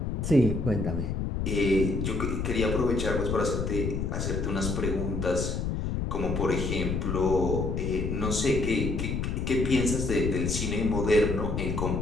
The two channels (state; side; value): noise; left; rumble, 1 dB below the sound